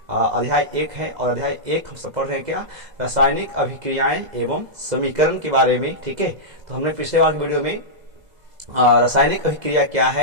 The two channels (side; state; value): left; late; 2.0 ms